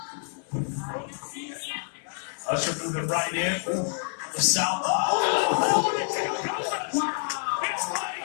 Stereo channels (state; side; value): silent; right; 60 dB below the other